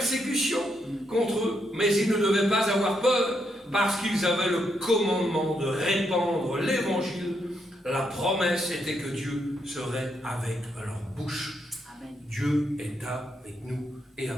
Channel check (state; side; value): normal; both; correlation 0.78